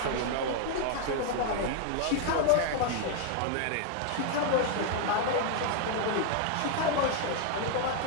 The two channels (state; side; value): different; both; correlation 0.00